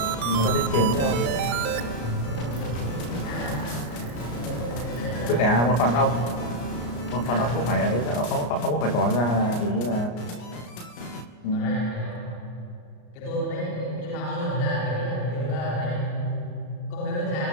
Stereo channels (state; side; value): late; right; 34 ms